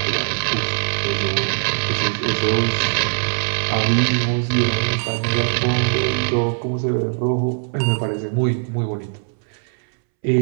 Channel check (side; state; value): left; silent; 65 dB below the other